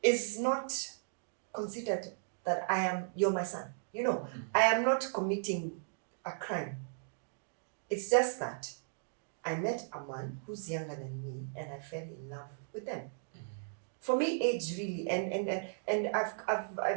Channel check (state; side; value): silent; left; digital silence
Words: is not considered that you're my son. I am not committing a crime. It's just that I met a man who's younger than me and I fell in love with them. For me, age really, and